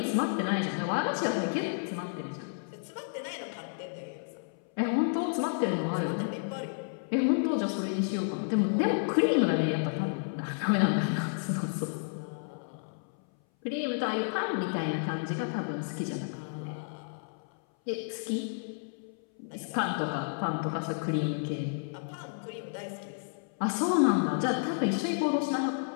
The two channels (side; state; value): right; silent; 57 dB below the other